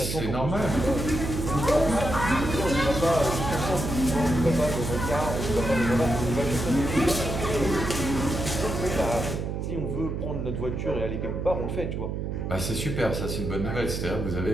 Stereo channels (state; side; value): noise; right; hum, 3 dB below the sound